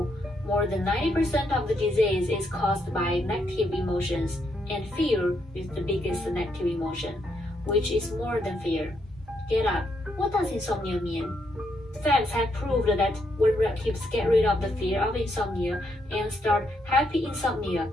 more than 90% of the disease is caused by negative emotions, and fear is the biggest negative emotion, which is more than fear. Get up. What does insomnia mean? Facts have proved that when relatives get rid of the fear of insomnia and start happy insomnia,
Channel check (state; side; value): normal; both; correlation 0.77